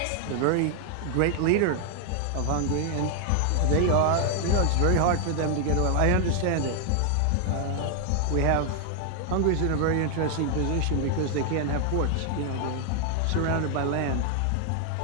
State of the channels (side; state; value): both; different; correlation 0.00